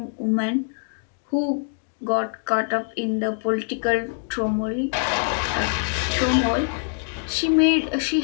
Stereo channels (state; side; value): silent; right; 63 dB below the other